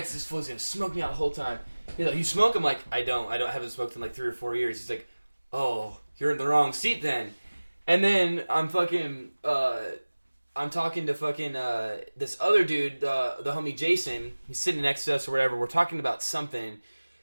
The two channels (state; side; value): inverted; both; correlation -1.00